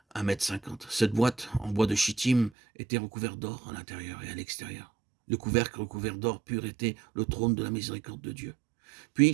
1,50 m. Cette boîte en bois de shittim était recouverte d'or à l'intérieur et à l'extérieur. Le couvercle recouvert d'or pur était le trône de la miséricorde de Dieu. Puis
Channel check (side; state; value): left; drops out; at 2.5 s